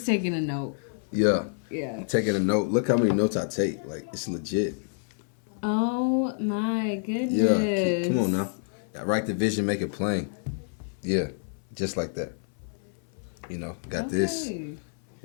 taking a note. Yeah. Yeah. Taking a note. Look how many notes I take. Like, it's legit. Oh, my goodness. Yeah. Come on now. Write the vision, make it plain. Yeah. Just like that. You know, got this.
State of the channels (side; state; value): right; silent; 59 dB below the other